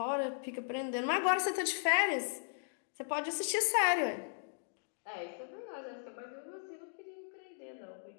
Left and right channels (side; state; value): right; silent; digital silence